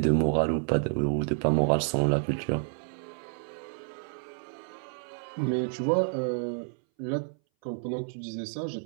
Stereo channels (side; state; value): left; silent; 58 dB below the other